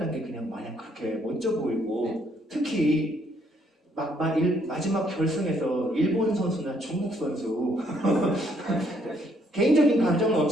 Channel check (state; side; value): normal; both; correlation 0.69